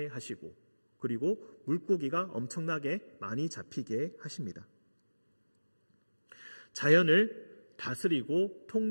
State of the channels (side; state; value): both; inverted; correlation -1.00